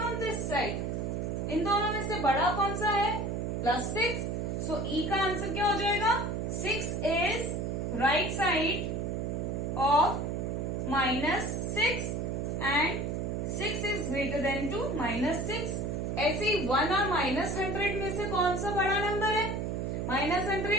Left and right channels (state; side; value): noise; right; hum, 1 dB below the sound